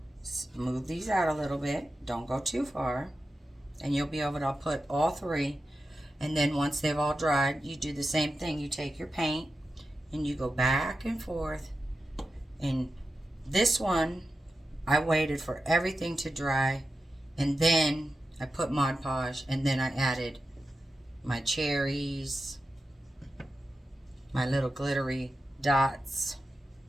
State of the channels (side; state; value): both; normal; correlation 0.90